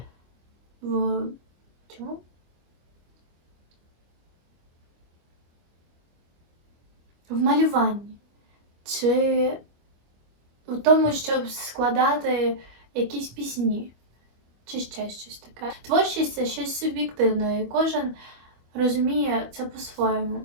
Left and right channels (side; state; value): left; late; 25 ms